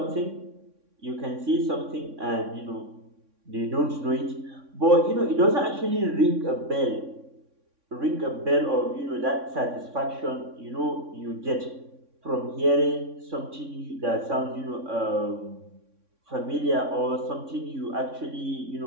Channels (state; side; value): late; left; 3.6 ms